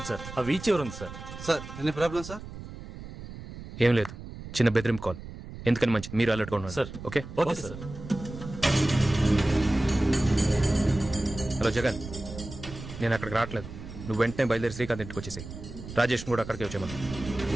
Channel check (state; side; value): noise; right; rumble, 12 dB below the sound